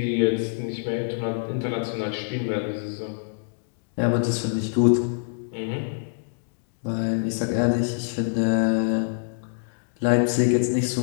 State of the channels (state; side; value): silent; right; digital silence